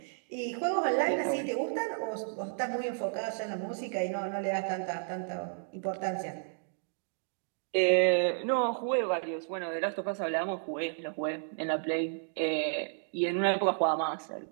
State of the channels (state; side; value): silent; left; digital silence